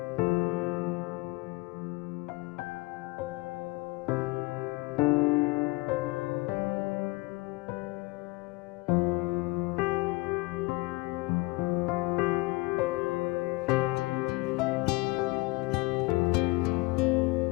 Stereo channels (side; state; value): right; quieter; 24.2 dB